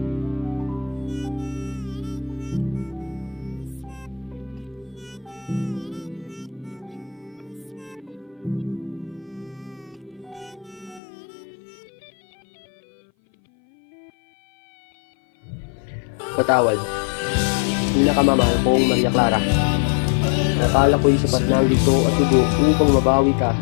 Patawad. Pinakamamahal kong Maria Clara. Nakala ko'y sapat na ang dito at dugo upang mabawi ka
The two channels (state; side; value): drops out; right; at 11.0 s